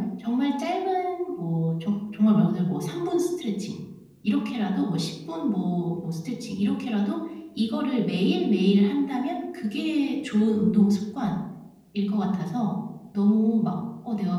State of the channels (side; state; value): both; identical; correlation 1.00